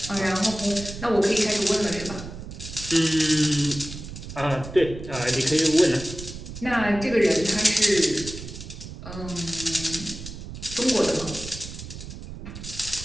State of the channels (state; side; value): noise; right; rumble, 11 dB below the sound